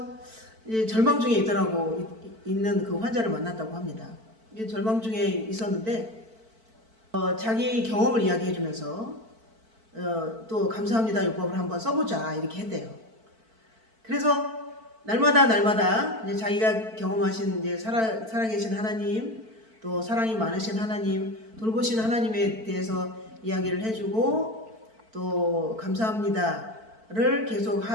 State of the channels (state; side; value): late; left; 4.5 ms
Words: 이제 절망 중에 있는 그 환자를 만났다고 합니다. 이제 절망 중에 있었는데 자기 경험을 이야기해주면서 또 감사합니다 요법을 한번 써보자 이렇게 했대요. 그래서 날마다 이제 자기가 경험하신 이제 살아계신 하나님, 또 사랑이 많으신 하나님, 돌보신 하나님에 대해서 이야기를 해주고 또 감사합니다를 계속